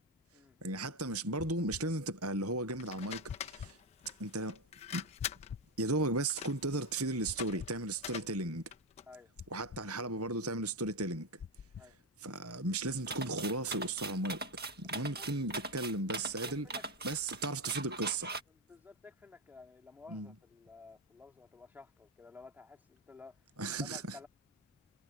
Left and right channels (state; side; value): normal; both; correlation 0.11